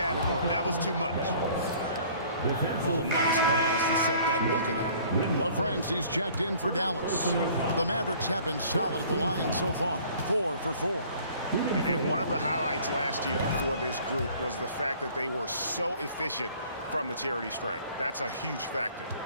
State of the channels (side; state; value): both; inverted; correlation -0.52